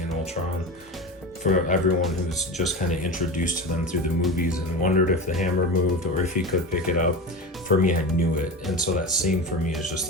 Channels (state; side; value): normal; both; correlation 0.26